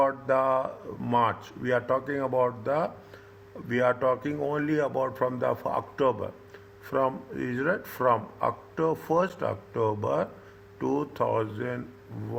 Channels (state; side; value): identical; both; correlation 1.00